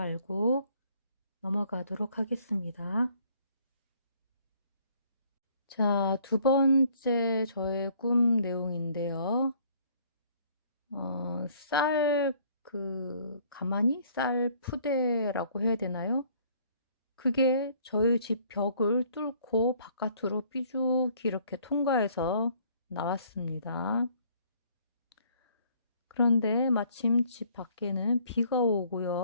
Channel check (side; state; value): both; inverted; correlation -0.60